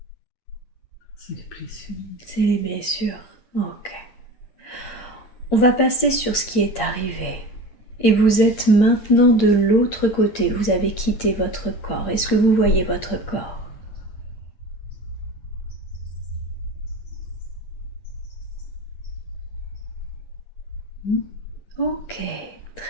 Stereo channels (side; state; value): right; late; 10 ms